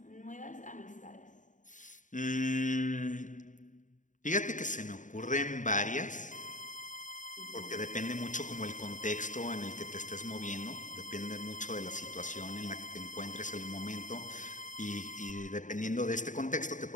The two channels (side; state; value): right; late; 0.37 ms